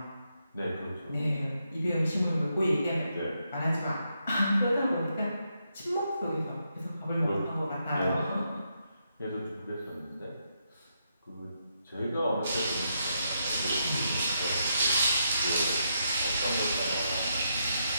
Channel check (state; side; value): inverted; both; correlation -0.80